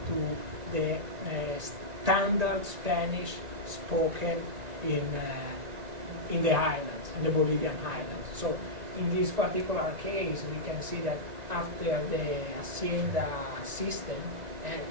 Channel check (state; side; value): late; left; 2.0 ms